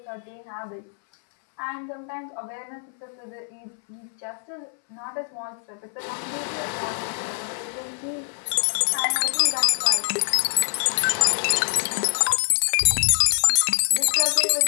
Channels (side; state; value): right; silent; 63 dB below the other